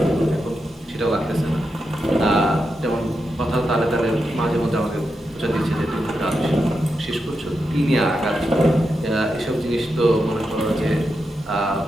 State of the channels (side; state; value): both; normal; correlation 0.87